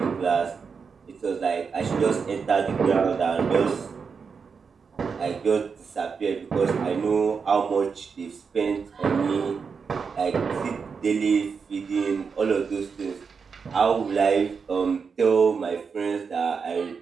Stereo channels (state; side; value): quieter; left; 5.6 dB